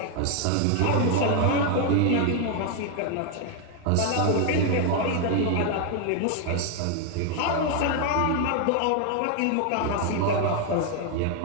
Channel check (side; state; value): both; different; correlation 0.01